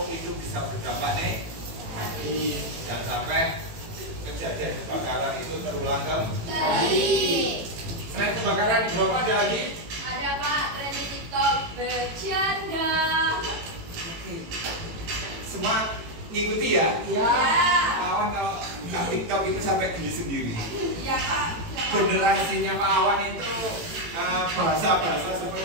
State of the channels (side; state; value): left; late; 18 ms